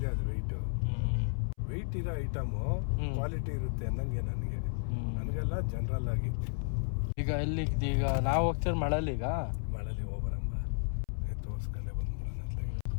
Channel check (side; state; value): right; silent; 56 dB below the other